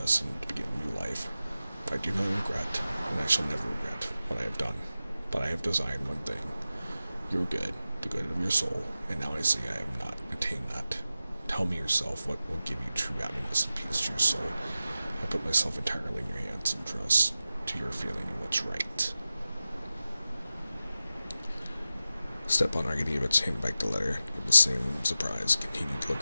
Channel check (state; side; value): inverted; both; correlation -0.94